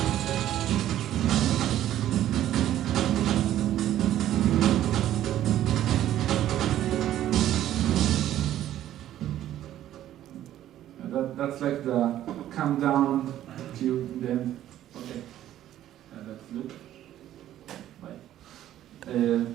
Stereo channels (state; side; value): quieter; left; 12.4 dB